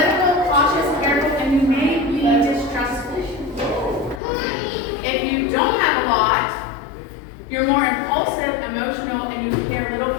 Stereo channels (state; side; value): drops out; right; at 4.2 s